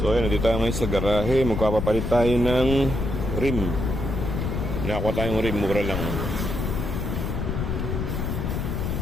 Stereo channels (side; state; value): left; noise; rumble, 2 dB below the sound